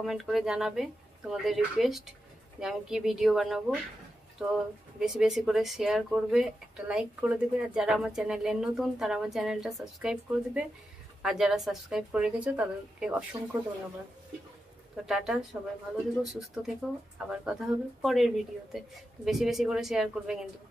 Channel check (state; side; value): normal; both; correlation 0.89